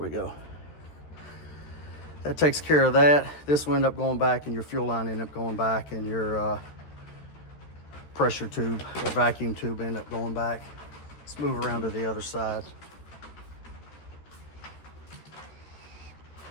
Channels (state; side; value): late; right; 13 ms